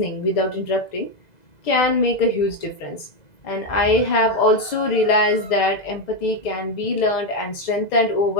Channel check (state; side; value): late; right; 2.0 ms